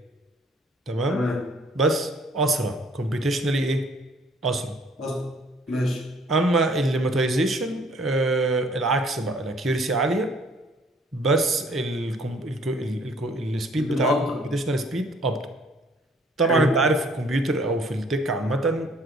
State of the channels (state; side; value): normal; both; correlation 0.59